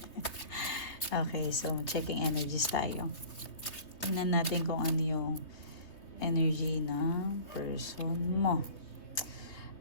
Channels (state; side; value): late; right; 3.2 ms